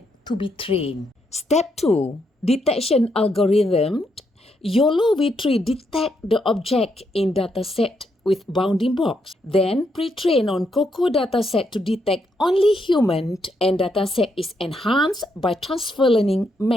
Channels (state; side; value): normal; both; correlation 0.78